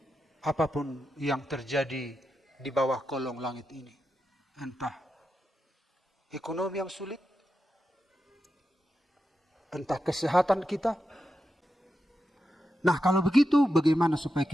Apapun yang terjadi di bawah kolong langit ini. Entah ekonomi yang sulit, entah kesehatan kita. Nah kalau begitu bagaimana supaya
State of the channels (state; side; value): normal; both; correlation 0.88